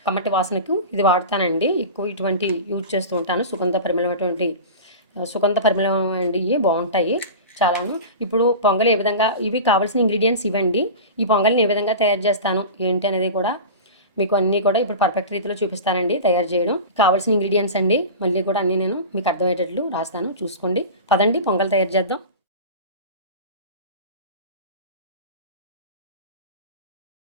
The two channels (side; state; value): both; inverted; correlation -0.31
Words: కమ్మటి వాసనకు ఇది వాడతానండి. ఎక్కువ ఇటువంటి యూజ్ చేస్తూ ఉంటాను. సుగంధ పరిమళం అండి. ఇవి బాగుంటాయి చాలాను. ఇప్పుడు పొంగలి ఏ విధంగా, ఇవి కావాల్సిన ఇంగ్రీడియంట్స్ ఇవ్వండి. ఈ పొంగలిని ఏ విధంగా తయారు చేస్తాను ఏంటి అనేది కూడా మీకు అన్నీ కూడా ఇప్పుడు పర్ఫెక్ట్ రీతిలో చూపిస్తానండి తయారు చేయడం. కావాల్సిన ఇంగ్రీడియంట్స్ అండి మళ్ళీ కూడా అన్నీ నేను మీకు అర్థమయ్యేటట్లు రాస్తాను, చూసుకోండి. పదండి పొంగల్ తయారు చేద్దాం.